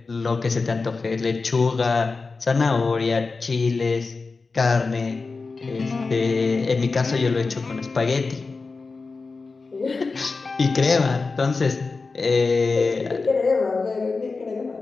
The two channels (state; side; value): quieter; right; 4.1 dB